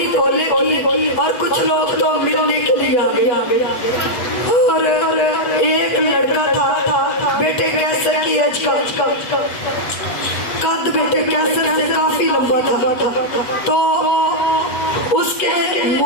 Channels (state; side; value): late; right; 8.1 ms